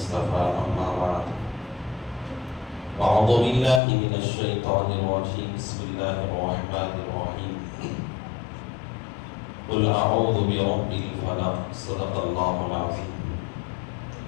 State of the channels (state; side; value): drops out; right; at 3.8 s